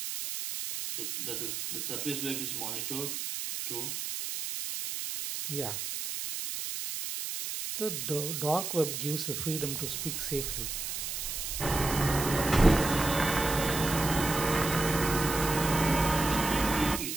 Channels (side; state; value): right; noise; hiss, 4 dB below the sound